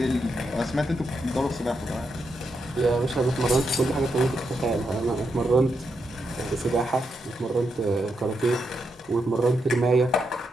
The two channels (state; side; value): normal; both; correlation 0.83